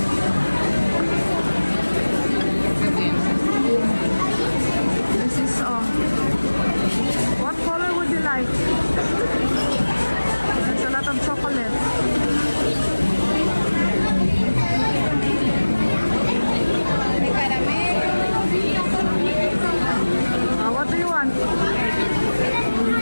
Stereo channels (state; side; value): inverted; both; correlation -1.00